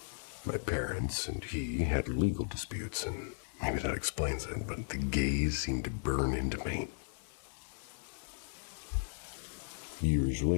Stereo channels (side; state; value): right; silent; 54 dB below the other